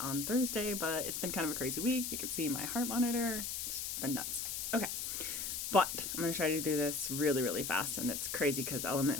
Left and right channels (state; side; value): noise; left; hiss, 3 dB below the sound